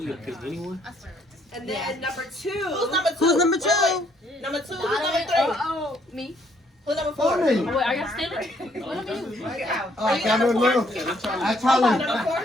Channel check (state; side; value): normal; both; correlation 0.67